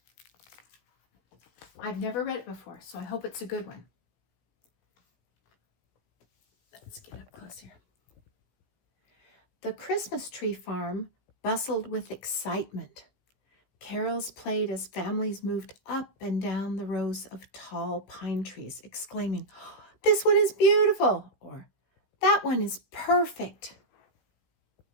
I've never read it before, so I hope it's a good one. Let's get up closer. The Christmas tree farm bustled with excitement. Carols played as families moved up and down the rows of tall pine trees, exclaiming, "This one is beautiful," or "That one is perfect."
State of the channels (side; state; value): right; late; 17 ms